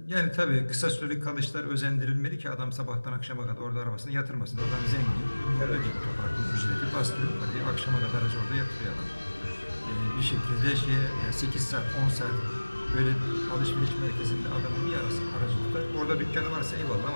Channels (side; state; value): both; inverted; correlation -1.00